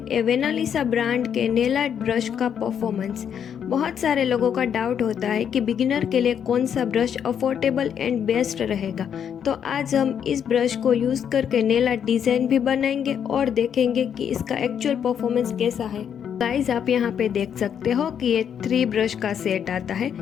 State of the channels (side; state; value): right; quieter; 8.3 dB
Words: एवेनालिसा ब्रांड के नेल आर्ट ब्रश का परफॉर्मेंस। बहुत सारे लोगों का डाउट होता है कि बिगिनर के लिए कौन सा ब्रश अफोर्डेबल एंड बेस्ट रहेगा। तो आज हम इस ब्रश को यूज़ करके नेल आर्ट डिज़ाइन भी बनाएंगे और देखेंगे कि इसका एक्चुअल परफॉर्मेंस कैसा है। गाइस, आप यहाँ पे देख सकते हो कि ये 3 ब्रश का सेट आता है